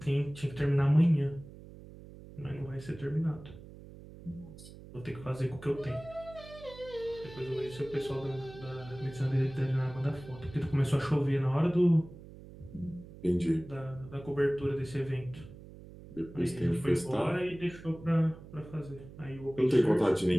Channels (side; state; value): right; noise; hum, 17 dB below the sound